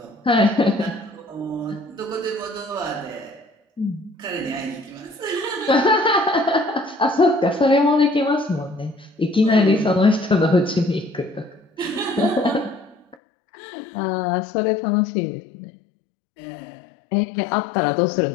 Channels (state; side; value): drops out; right; at 13.2 s